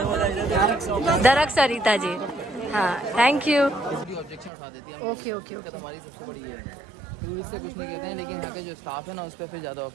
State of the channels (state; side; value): drops out; left; at 4.5 s